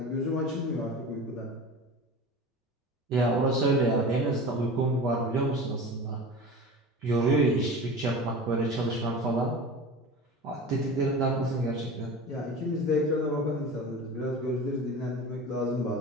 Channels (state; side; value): normal; both; correlation 0.34